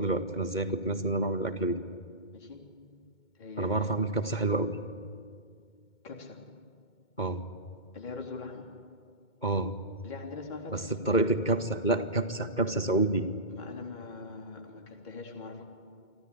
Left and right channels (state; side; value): late; right; 2.2 ms